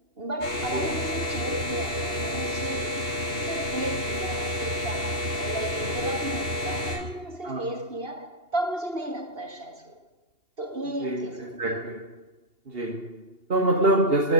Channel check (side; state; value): left; late; 2.8 ms